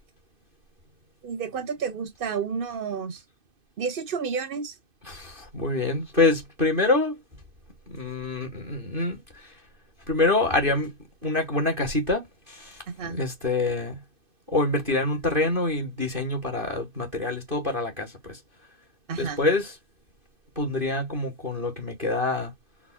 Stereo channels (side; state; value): left; late; 2.5 ms